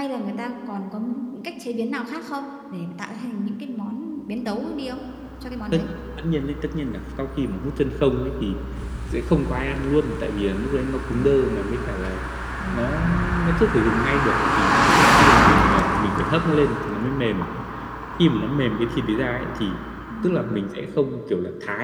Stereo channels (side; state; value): both; identical; correlation 1.00